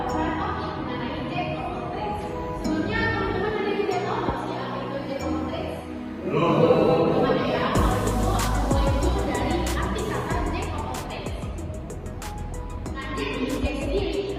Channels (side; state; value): both; identical; correlation 1.00